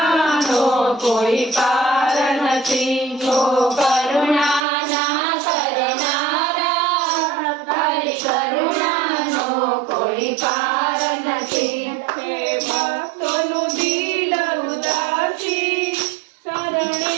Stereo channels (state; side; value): drops out; left; at 4.6 s